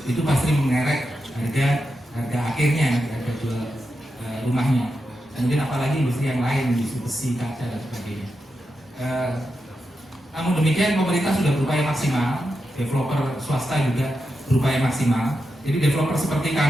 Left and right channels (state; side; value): normal; both; correlation 0.88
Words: Itu pasti mengerek harga akhirnya, harga jual rumahnya. Kemudian apalagi industri yang lain, industri besi, kaca dan sebagainya. Namun demikian pemerintah sudah berupaya maksimal, developer swasta juga berupaya maksimal. Jadi developer seperti